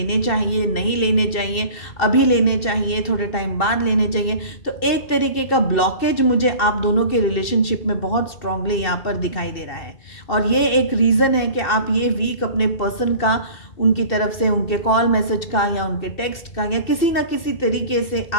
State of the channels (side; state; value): right; late; 2.7 ms